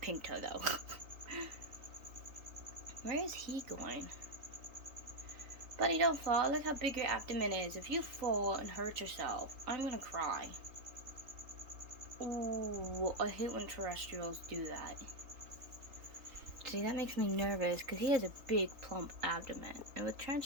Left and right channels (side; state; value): left; late; 3.8 ms